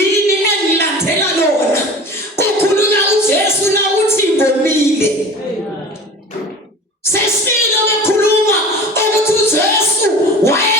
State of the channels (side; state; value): both; normal; correlation 0.38